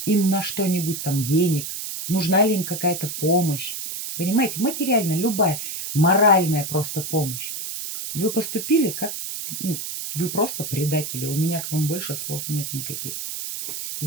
им на что-нибудь там денег, нужна ли им какая-то помощь. Понимаете, материальная, любая, моральная просто помощь. Вы поступили как... вы просто предатели. У меня к вам больше слов нет никаких.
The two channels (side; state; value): right; noise; hiss, 6 dB below the sound